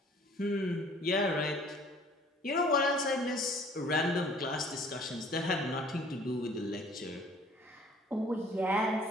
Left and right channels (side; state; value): both; normal; correlation 0.54